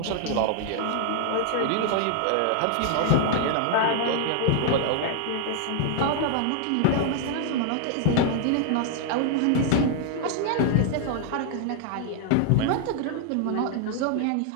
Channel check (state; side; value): different; both; correlation 0.00